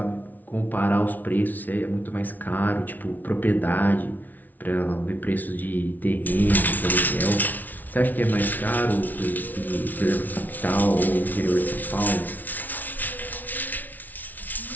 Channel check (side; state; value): right; late; 0.081 ms